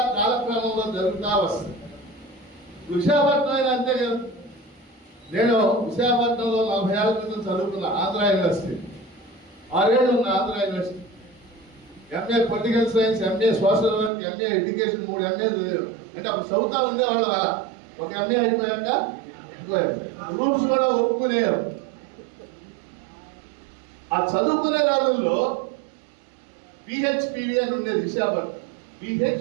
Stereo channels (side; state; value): left; drops out; at 14.1 s